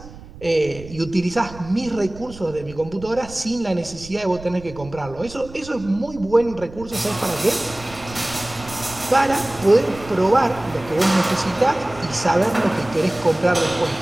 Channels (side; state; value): right; noise; rumble, 17 dB below the sound